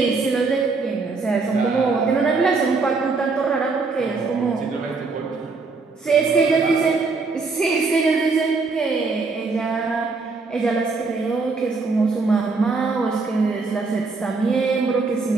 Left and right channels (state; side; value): quieter; left; 4.2 dB